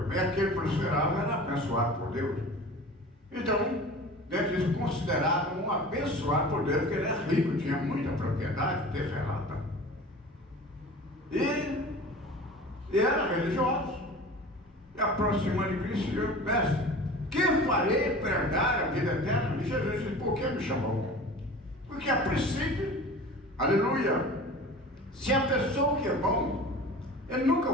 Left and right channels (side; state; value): both; normal; correlation 0.39